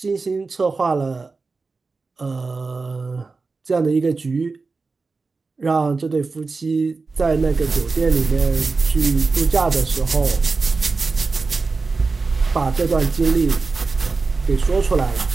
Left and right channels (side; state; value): left; quieter; 4.1 dB